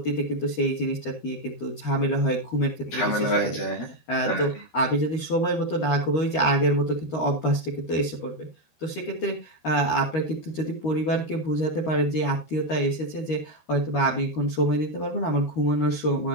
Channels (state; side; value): late; right; 13 ms